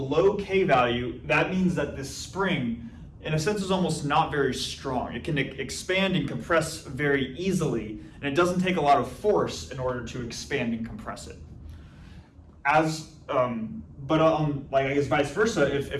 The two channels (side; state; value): both; identical; correlation 1.00